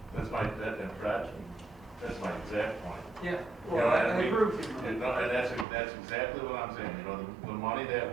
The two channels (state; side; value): drops out; left; at 5.7 s